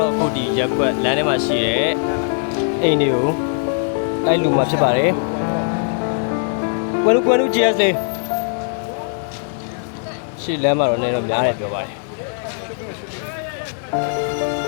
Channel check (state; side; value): silent; right; digital silence